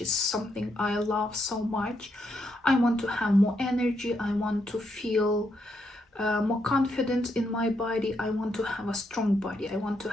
something I love so much. I want to have more energy. I want to feel more confident in my body. I want to have a strong body. I want to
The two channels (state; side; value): normal; both; correlation 0.79